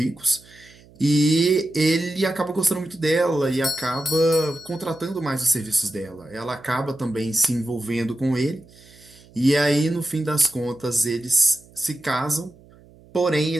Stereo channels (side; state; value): right; noise; hum, 25 dB below the sound